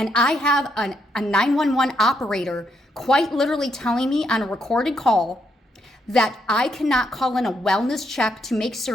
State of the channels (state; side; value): normal; both; correlation 0.77